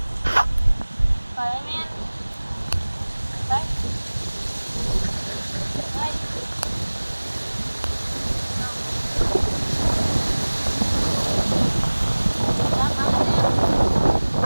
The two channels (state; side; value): inverted; both; correlation -1.00